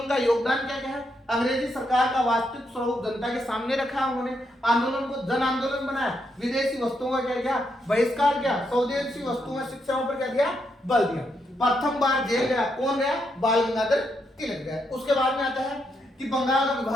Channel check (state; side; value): normal; both; correlation 0.79